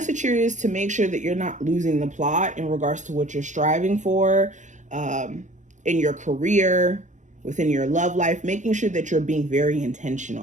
here is to make sure that you're not losing the plot in regards to what you're striving for in your career, within your love life, making sure that you're being very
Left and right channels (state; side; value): late; left; 0.35 ms